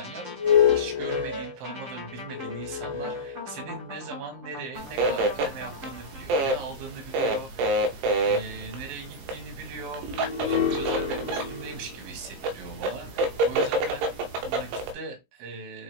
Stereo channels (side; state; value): left; late; 15 ms